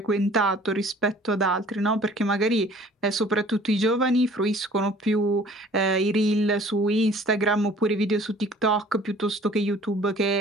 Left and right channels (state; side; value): normal; both; correlation 0.52